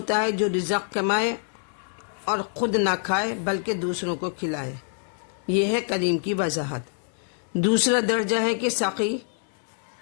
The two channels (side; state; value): right; silent; 61 dB below the other